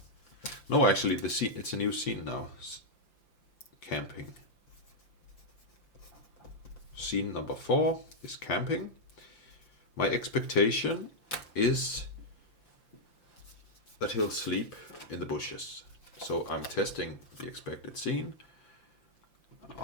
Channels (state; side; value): late; right; 5.8 ms